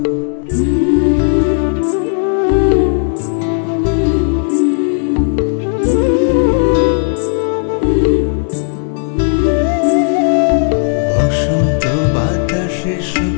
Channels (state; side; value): silent; right; 59 dB below the other